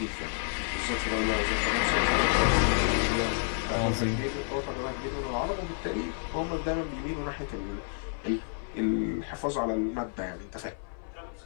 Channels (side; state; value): right; silent; 58 dB below the other